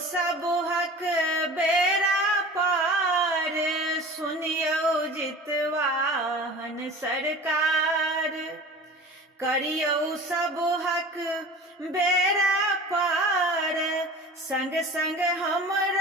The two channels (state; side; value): normal; both; correlation 0.39